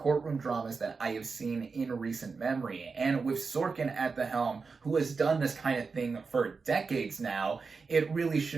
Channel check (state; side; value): quieter; left; 4.7 dB